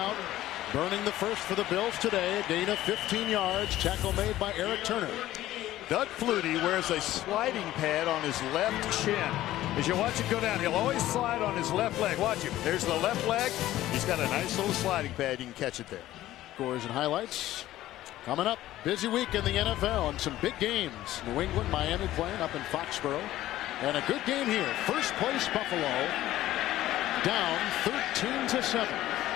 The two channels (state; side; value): quieter; right; 14.6 dB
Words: Burning the first for the Bills today. A gain of 15 yards. Tackle made by Eric Turner. Doug Flutie wears a sliding pad on his left shin. As you watch it go down, he'll always slide on his left leg. Watch him. There's the left leg. He's got a nice little sliding pad. You can catch it there. Scores and highlights. Coming up, busy week in the NFL and some big games. New England, Miami playing up in Foxborough. And a good game here. First place Buffalo down 13-7.